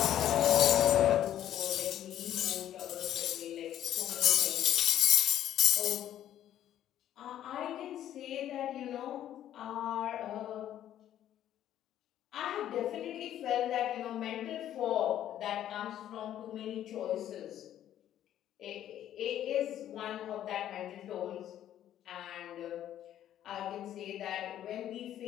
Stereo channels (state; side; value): quieter; right; 11.5 dB